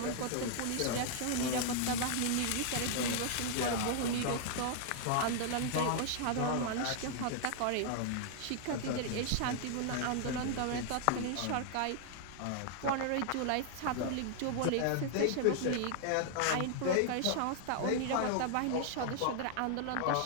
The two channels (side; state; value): both; different; correlation 0.00